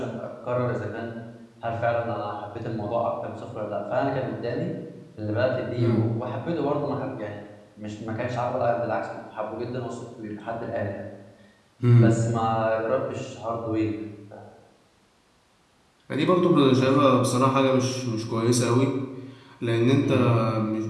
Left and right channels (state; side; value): identical; both; correlation 1.00